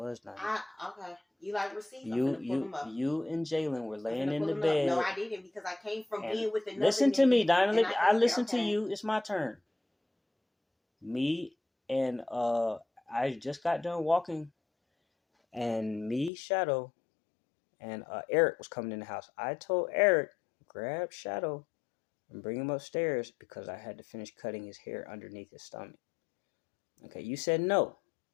not. Okay. You like receipts? I'm gonna pull them up. You and Jalen were laying in the bed. No, I didn't because I came from being with another. Listen to me, Dinah. I listen to you. It's my turn. Me and I just got done walking, and me, Shadow, and Eric was coming in the house. I told Eric, grab Shadow and bring him upstairs because I had to finish cutting his hair underneath his stomach. Okay, you said no.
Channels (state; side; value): drops out; right; at 16.3 s